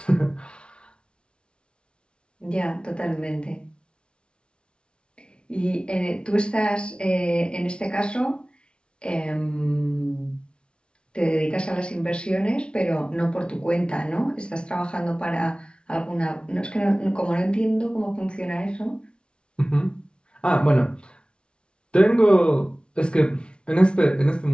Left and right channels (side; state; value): right; late; 0.057 ms